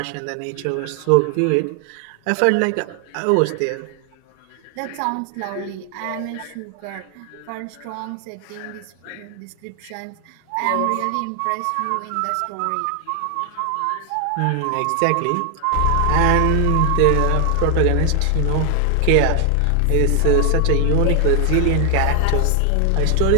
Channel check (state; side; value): different; both; correlation 0.00